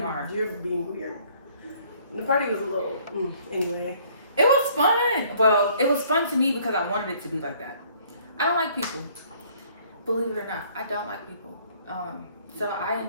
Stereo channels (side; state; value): both; inverted; correlation -0.60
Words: hard. You're being weird. The party was a little. Anyway. It was fun. Well, it was fun to me because I wanted it to be like that. I don't like people. Believe it or not, I don't like people. So I